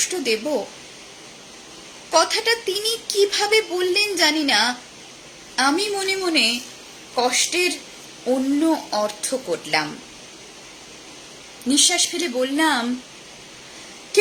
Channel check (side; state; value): both; identical; correlation 1.00